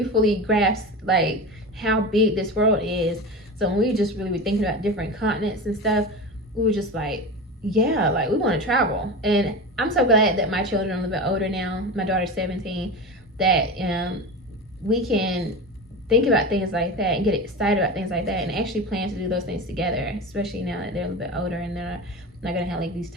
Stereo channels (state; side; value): normal; both; correlation 0.26